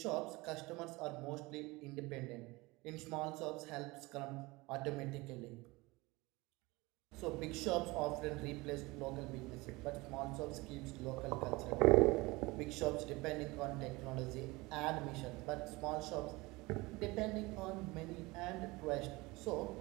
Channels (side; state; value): left; quieter; 22.7 dB